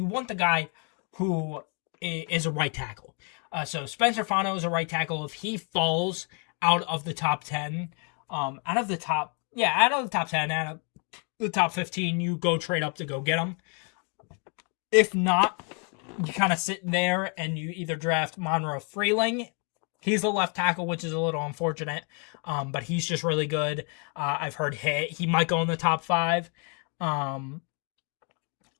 want the guy who is a right tackle. So Spencer Fano is a right tackle. If he falls out of the top 10, out of the top 10, out of the top 15, you go trade up to go get him. If not, you kind of sit there and you either draft Monroe Freeling He's the left tackle, which is a little unfortunate, but he's just really good. I've heard he might go in the top 5. Um,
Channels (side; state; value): right; quieter; 38.0 dB